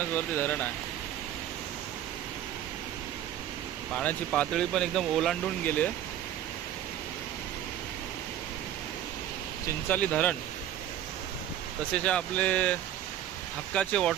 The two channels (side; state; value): left; quieter; 11.3 dB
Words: वरती धरण आहे. पाण्याची पातळी पण एकदम ओलांडून गेली आहे. चिंचाली धरण तसेच आपले हक्काचे